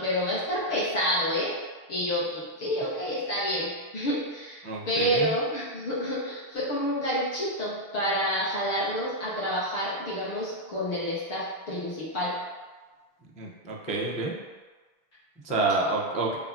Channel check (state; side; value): late; right; 6.6 ms